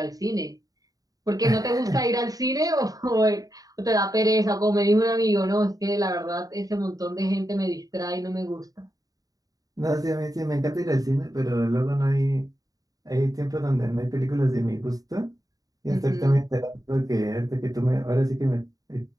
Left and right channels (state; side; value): late; left; 0.18 ms